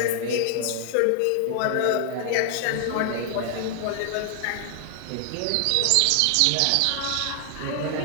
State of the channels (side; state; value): both; different; correlation 0.00